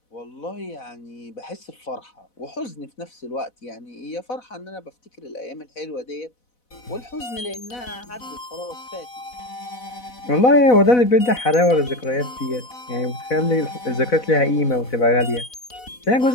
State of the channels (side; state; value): right; late; 4.0 ms